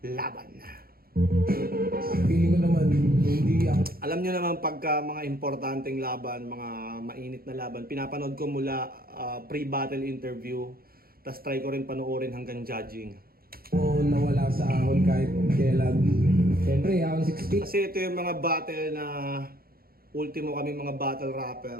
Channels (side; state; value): left; late; 0.44 ms